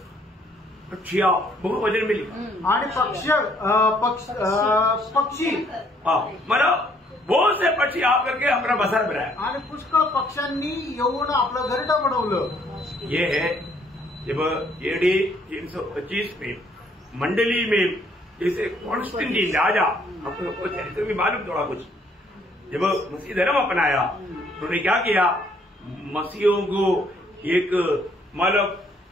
पक्षी बहुत वजन मिली. आणि पक्षी मतलब बहुत से पक्षी आकर के अपना बसर बनाया. आणि पुष्कळ पक्ष्यांनी येऊन आपलं घरटं बनवलं. ये है जब AD 325 में मंडली में जैसे कॉन्स्टेंटाइन राजा, आपको चरित्र भी मालूम थोड़ा कुछ, जब मसीह धर्म अपनाया उन्होंने क्या किया. मसीहों को एक मतलब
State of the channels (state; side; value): normal; both; correlation 0.65